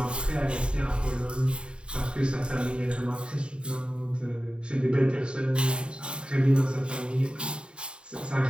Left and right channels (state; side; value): late; left; 0.052 ms